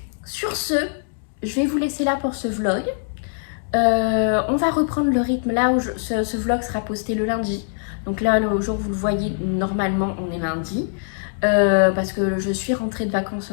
sur ce, je vais vous laisser là pour ce vlog. On va reprendre le rythme là où ce vlog sera posté le lundi. Donc là, le jour où vous le voyez, normalement, on est lundi. Parce que je suis rentrée de vacances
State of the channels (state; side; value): silent; right; digital silence